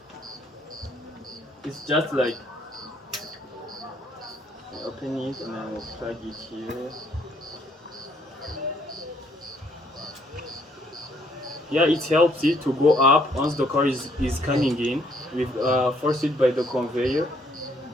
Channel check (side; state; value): both; normal; correlation 0.67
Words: it's just like open it and I will plug it here. Yeah, it helps it to go up once the car is coming in with forced by the conveyor.